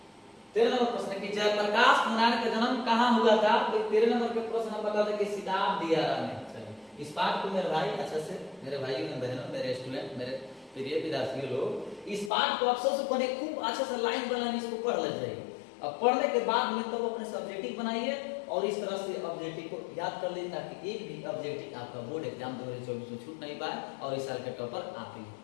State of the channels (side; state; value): right; drops out; at 12.3 s